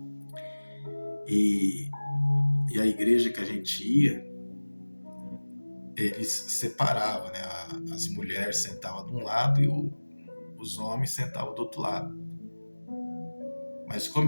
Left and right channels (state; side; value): inverted; both; correlation -1.00